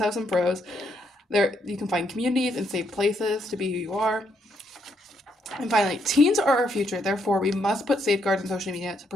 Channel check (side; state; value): both; normal; correlation 0.75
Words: some pros. There, you can find communities and safe places to be who you are. And finally, teens are our future, therefore we must put safeguards on social media to